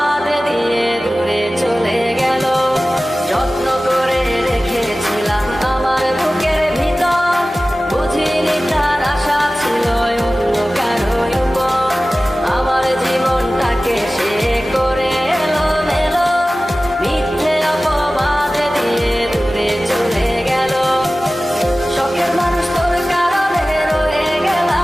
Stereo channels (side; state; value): both; normal; correlation 0.97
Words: দিয়ে দূরে চলে গেল। যত্ন করে রেখেছিলাম আমার বুকের ভিতর, বুঝিনি তার আশা ছিল অন্য কারো উপর। আমার জীবনটাকে সে করে এলোমেলো, মিথ্যে অপবাদ দিয়ে দূরে চলে গেল। শখের মানুষ তোর কারণে রয়ে